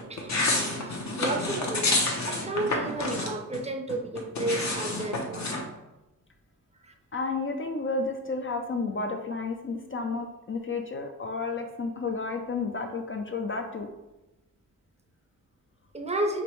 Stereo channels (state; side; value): normal; both; correlation 0.15